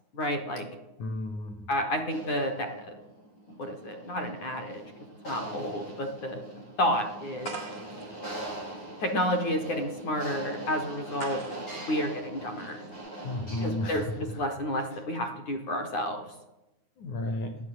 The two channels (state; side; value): late; right; 9.6 ms